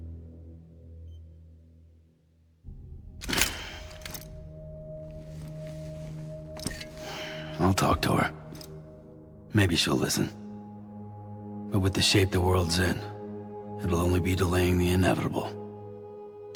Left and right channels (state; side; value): identical; both; correlation 1.00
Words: I'll talk to her. Maybe she'll listen. But with the shape the world's in, it'll only be delaying the inevitable.